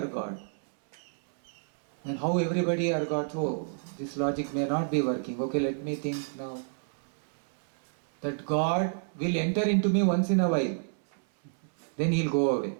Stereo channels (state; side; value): silent; left; 58 dB below the other